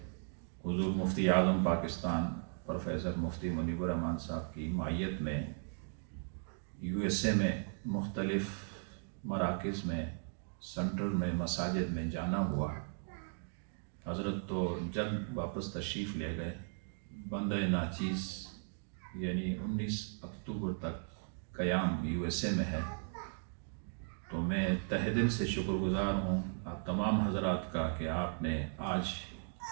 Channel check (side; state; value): left; silent; 53 dB below the other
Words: حضور مفتی اعظم پاکستان پروفیسر مفتی منیب الرحمان صاحب کی معیت میں USA میں مختلف مراکز میں سینٹر میں مساجد میں جانا ہوا۔ حضرت تو جلد واپس تشریف لے گئے۔ بندہ ناچیز یعنی 19 اکتوبر تک قیام USA میں ہے، تو میں تہہ دل سے شکر گزار ہوں آپ تمام حضرات کا کہ آپ نے آج